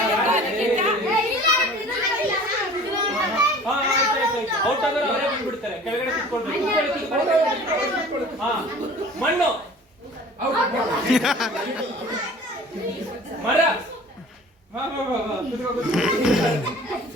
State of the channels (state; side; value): normal; both; correlation 0.45